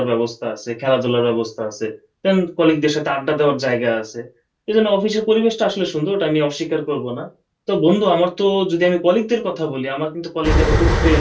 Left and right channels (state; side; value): identical; both; correlation 1.00